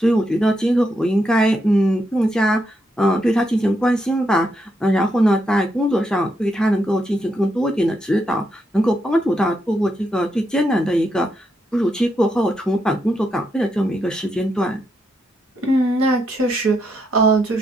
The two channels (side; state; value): both; normal; correlation 0.80